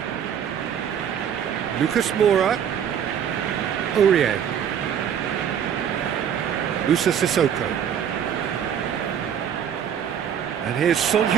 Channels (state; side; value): quieter; left; 8.6 dB